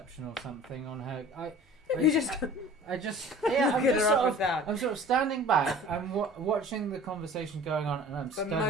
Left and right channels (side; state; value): both; normal; correlation 0.44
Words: or something on her? You just yeah, I'm get just her sort up of with that. I'm sort of standing back. I'm watching the conversation going on, and I'm But studying